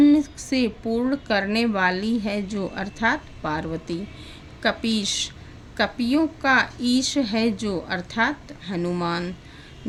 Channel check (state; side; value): identical; both; correlation 1.00